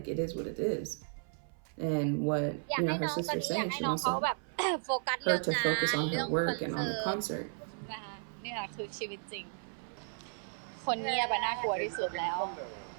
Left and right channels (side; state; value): left; silent; 55 dB below the other